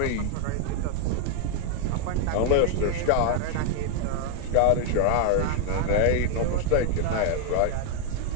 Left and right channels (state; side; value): different; both; correlation 0.00